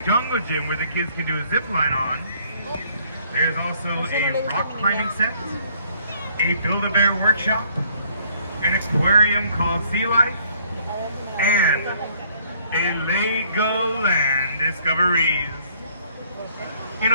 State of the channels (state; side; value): inverted; both; correlation -0.63